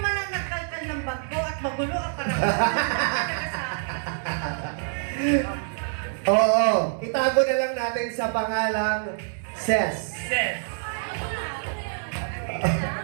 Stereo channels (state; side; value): silent; left; digital silence